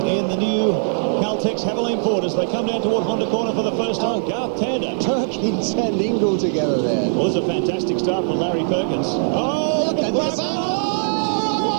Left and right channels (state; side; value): silent; left; digital silence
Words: the new Caltex Haviland Ford as they come down toward Honda Corner for the first time. Garth Tander. Perkins and Ingall together there. Well, it was a fantastic start from Larry Perkins. Oh, look at this.